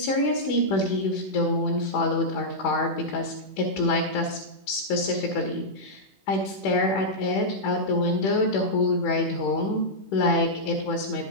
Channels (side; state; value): right; late; 15 ms